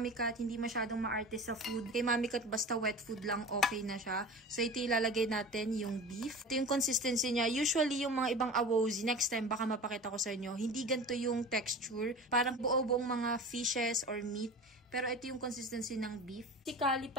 Cat, hindi masyadong maarte sa food. Kay Mami Cat, basta wet food lang, okay na siya. So, ito ilalagay natin yung beef. Ito yung consistency niya. Usually, yung mga ibang awozi, next time, baka mapakita ko sa inyo, hindi ganito yung texture. Parang buo-buong mga fishes or meat. Pero ito yung consistency ng beef. Si Kali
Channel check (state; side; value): normal; both; correlation 0.35